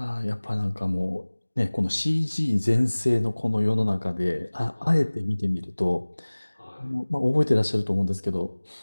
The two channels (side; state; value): both; inverted; correlation -1.00